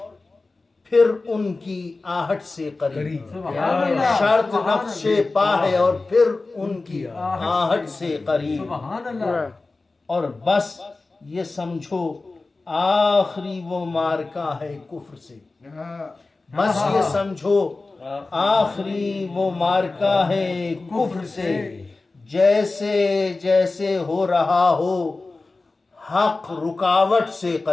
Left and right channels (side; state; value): right; quieter; 3.5 dB